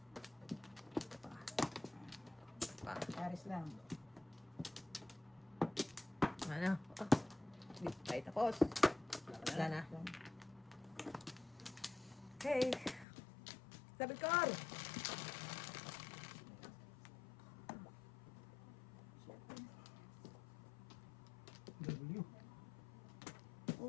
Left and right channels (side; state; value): right; drops out; at 13.1 s